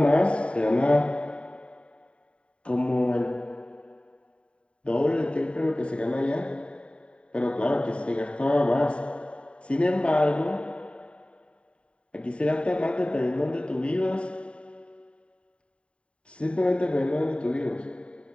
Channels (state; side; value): late; right; 0.058 ms